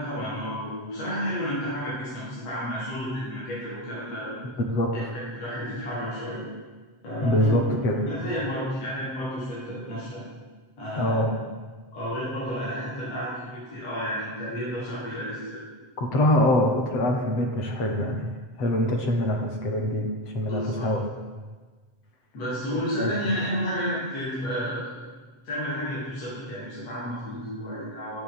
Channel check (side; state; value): right; late; 7.8 ms